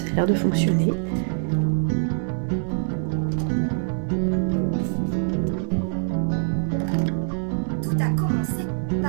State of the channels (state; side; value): silent; left; digital silence